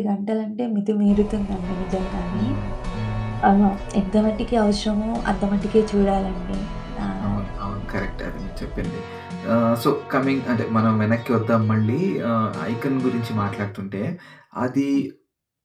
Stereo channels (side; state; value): both; identical; correlation 1.00